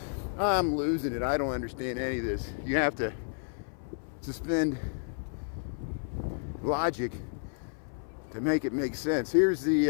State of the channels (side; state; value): right; silent; 57 dB below the other